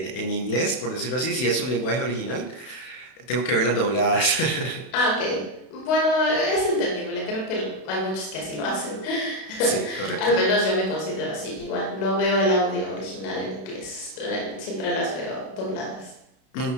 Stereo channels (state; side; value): late; right; 32 ms